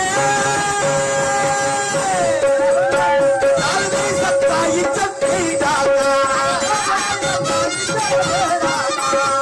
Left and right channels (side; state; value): both; identical; correlation 1.00